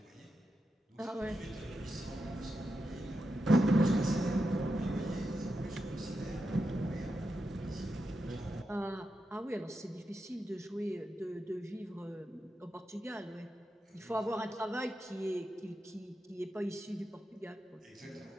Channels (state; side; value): normal; both; correlation 0.87